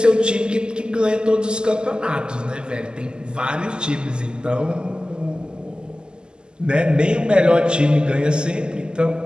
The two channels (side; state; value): left; late; 0.047 ms